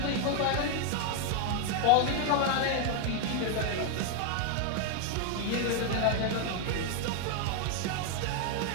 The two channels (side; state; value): both; different; correlation 0.01